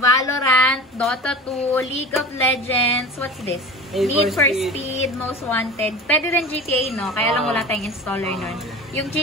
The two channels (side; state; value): both; normal; correlation 0.34